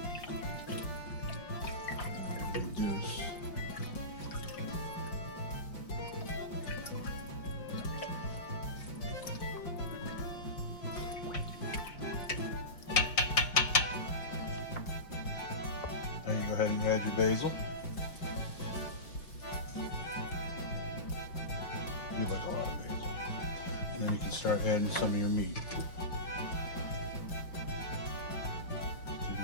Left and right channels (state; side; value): late; right; 5.6 ms